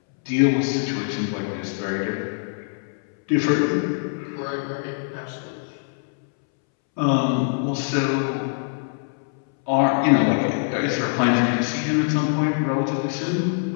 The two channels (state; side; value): silent; right; 63 dB below the other